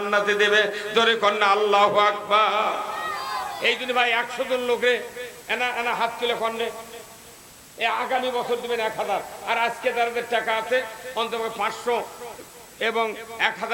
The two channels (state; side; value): identical; both; correlation 1.00